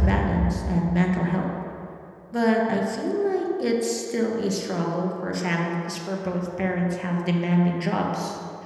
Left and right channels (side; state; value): both; identical; correlation 1.00